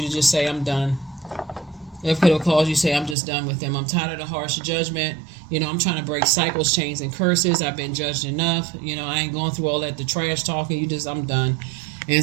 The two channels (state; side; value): drops out; left; at 3.2 s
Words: to just say, I'm done. It could have caused you to say, I'm just done with them. I'm tired of the harsh judgment. I'm trying to break cycles, chains, and curses. I've been judged enough. I ain't going through all that, the trash talking. I'm done. And